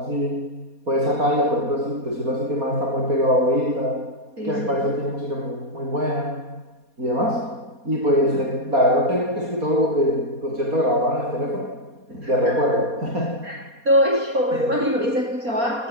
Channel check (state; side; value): late; left; 4.2 ms